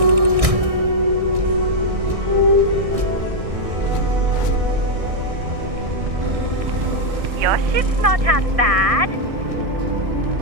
Your ship's not half bad.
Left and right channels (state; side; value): late; left; 1.6 ms